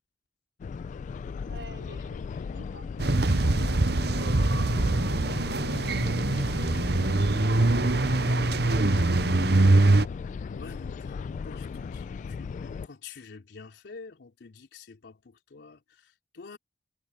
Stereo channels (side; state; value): both; normal; correlation 0.80